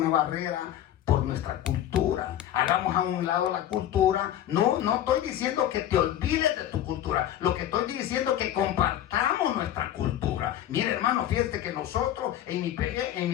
barrera por nuestra cultura. Hagamos a un lado la cultura. No estoy diciendo que te olvides de tu cultura. Lo que estoy diciendo es que compartamos nuestra cultura. Mire, hermano, fíjate que nosotros en mi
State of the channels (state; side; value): quieter; right; 11.7 dB